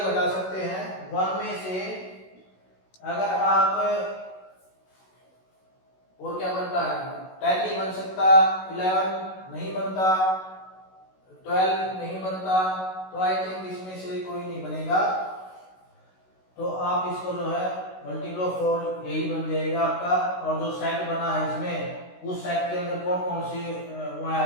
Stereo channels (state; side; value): late; right; 16 ms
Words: घटा सकते हैं? 1 में से अगर आप, और क्या बनता है? 10 नहीं बन सकता, 11 नहीं बनता, 12 नहीं बनता, तो आई थिंक इसमें से कोई नहीं बनेगा। तो आप इसको जो है मल्टीपल ऑफ 4 यही बन जाएगा आपका। और जो सेट बना है इसमें, उस सेट के अंदर कौन कौन से